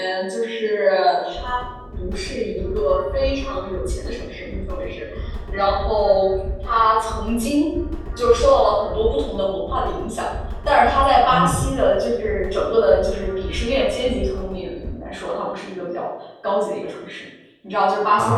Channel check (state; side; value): identical; both; correlation 1.00